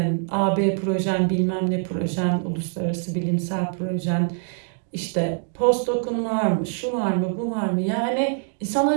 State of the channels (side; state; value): left; silent; 57 dB below the other